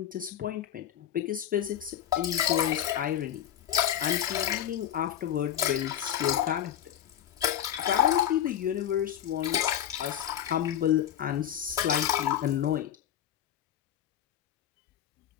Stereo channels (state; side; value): quieter; right; 10.5 dB